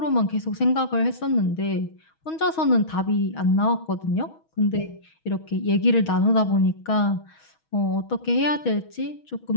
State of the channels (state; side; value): late; right; 6.3 ms